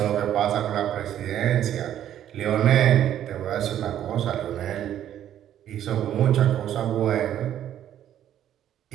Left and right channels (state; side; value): quieter; left; 11.0 dB